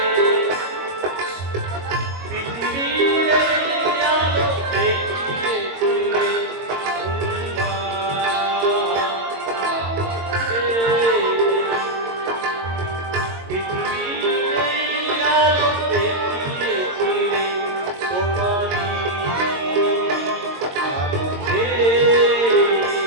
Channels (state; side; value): late; left; 22 ms